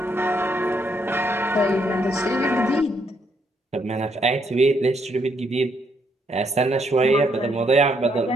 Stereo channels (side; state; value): both; normal; correlation 0.74